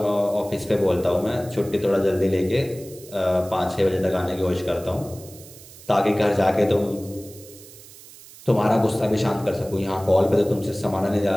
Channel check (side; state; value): right; noise; hiss, 19 dB below the sound